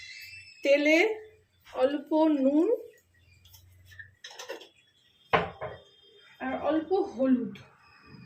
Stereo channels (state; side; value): identical; both; correlation 1.00